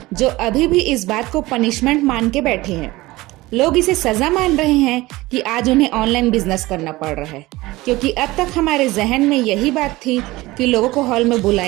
जो अभी भी इस बात को पनिशमेंट मान के बैठे हैं। लोग इसे सजा मान रहे हैं कि आज उन्हें ऑनलाइन बिजनेस करना पड़ रहा है, क्योंकि अब तक हमारे जहन में यही बात थी कि लोगों को हॉल में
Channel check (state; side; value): quieter; left; 19.5 dB